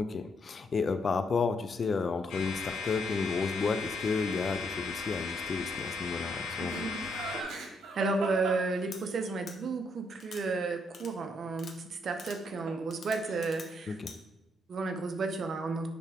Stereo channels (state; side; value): normal; both; correlation 0.75